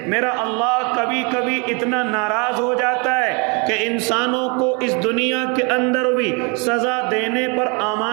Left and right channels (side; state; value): left; quieter; 32.3 dB